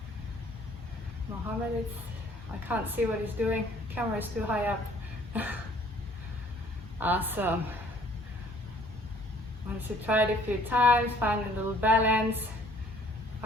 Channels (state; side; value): normal; both; correlation 0.57